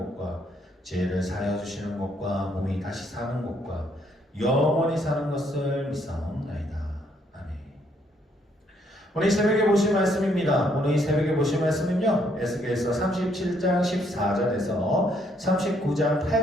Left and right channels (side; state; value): both; normal; correlation 0.70